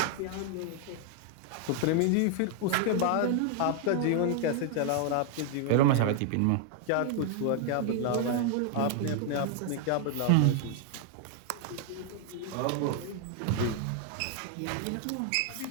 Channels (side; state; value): both; different; correlation 0.00